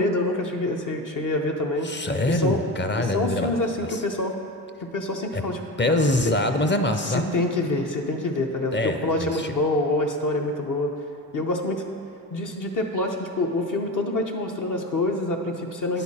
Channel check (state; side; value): normal; both; correlation 0.26